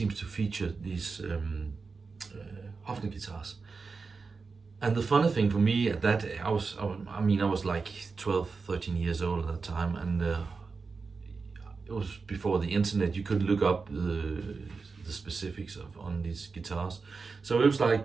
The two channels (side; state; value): left; quieter; 4.6 dB